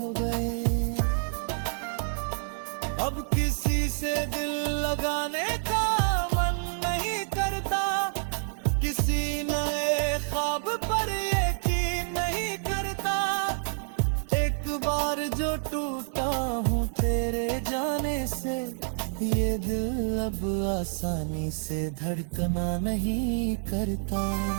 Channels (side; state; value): left; silent; digital silence